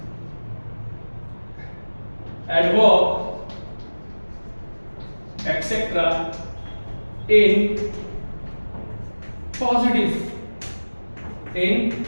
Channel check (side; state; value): both; inverted; correlation -1.00